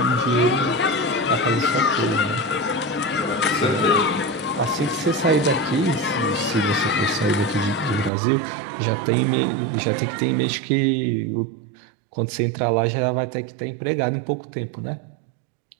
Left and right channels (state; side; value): drops out; left; at 8.1 s